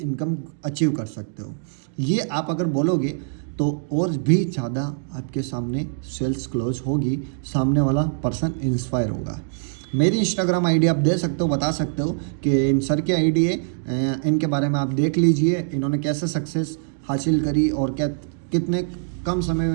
अचीव कर सकते हो। ये आप अगर बोलोगे तो और भी ज़्यादा आपके सामने सेल्स क्लोज होगी, सामने वाला पर्सन इंस्पायर होगा। मेरी इंस्टाग्राम आईडी आप दे सकते हो, बता सकते हो कि इन सर की आईडी है, इनके बारे में आप देख लीजिए, इन्होंने कैसे सक्सेस हासिल करी और क्या कितने कम समय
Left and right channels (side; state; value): left; silent; digital silence